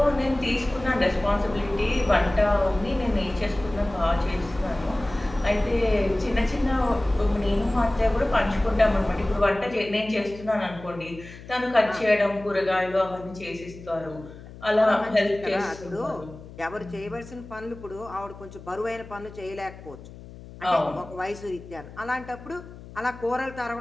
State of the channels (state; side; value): noise; left; hum, 16 dB below the sound